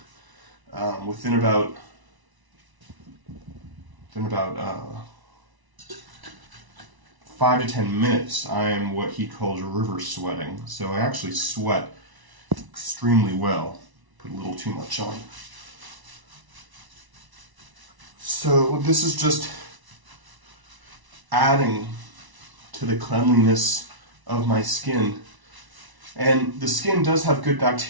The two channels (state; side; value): late; left; 1.0 ms